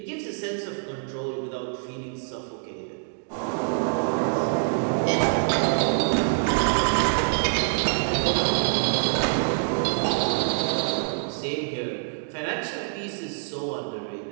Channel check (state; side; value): silent; left; digital silence